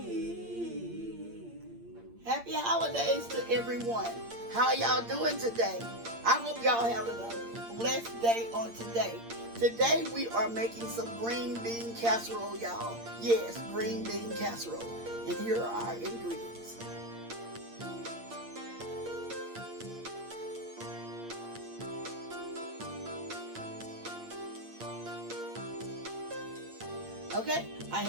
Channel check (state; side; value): late; left; 8.7 ms